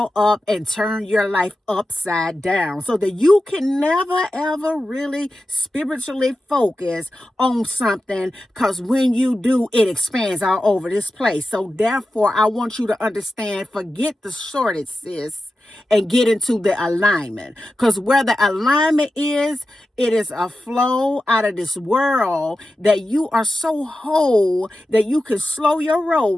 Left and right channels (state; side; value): normal; both; correlation 0.92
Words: up and turn your life upside down so that you can never ever really spiritually focus on something, because when you do, it expands all over this place. So therefore, I want you to understand, forget the shortage, sis, and get into the alignment. Because where the alignment is, it is a flow out of this world that you are so whole that you can slow your roll